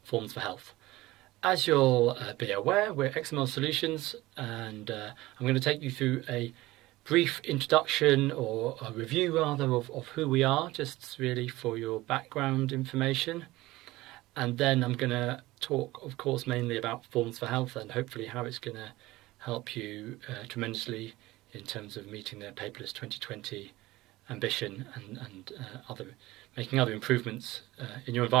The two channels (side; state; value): left; quieter; 18.7 dB